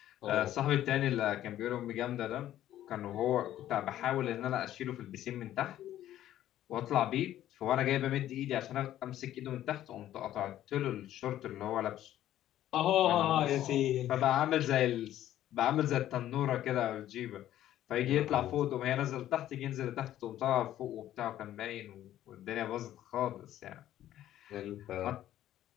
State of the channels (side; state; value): right; quieter; 12.6 dB